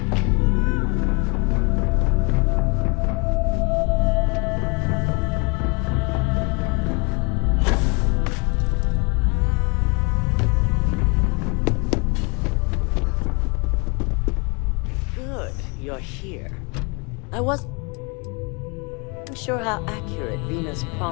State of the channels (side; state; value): right; quieter; 32.0 dB